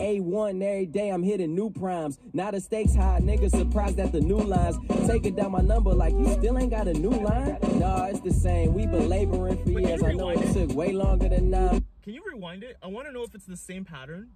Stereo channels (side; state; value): both; identical; correlation 1.00